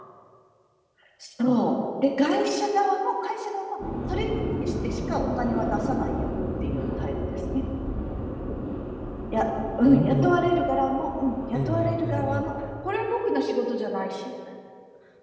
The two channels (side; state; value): both; identical; correlation 1.00